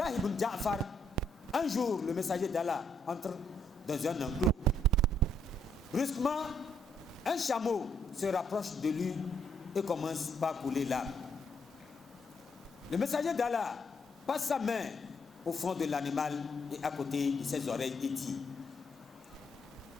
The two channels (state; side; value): normal; both; correlation 0.73